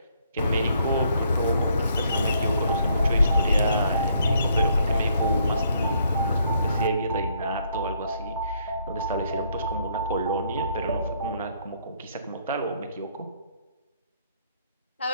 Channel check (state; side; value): inverted; both; correlation -0.69